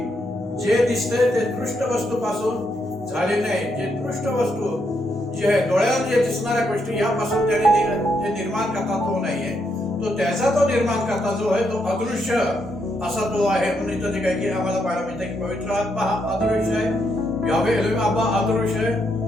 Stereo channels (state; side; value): normal; both; correlation 0.78